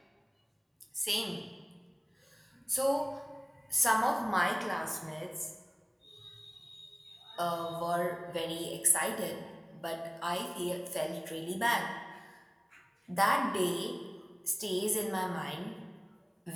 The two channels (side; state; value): both; identical; correlation 1.00